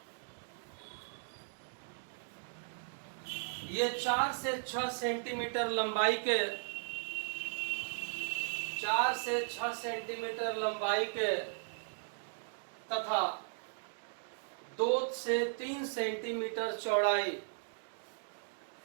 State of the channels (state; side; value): silent; left; digital silence